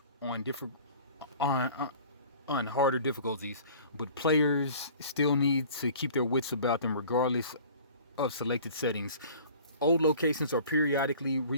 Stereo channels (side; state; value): both; inverted; correlation -0.46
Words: on harder difficulties, but players still need to keep their wits about them regardless of selected settings. Old locations are periodically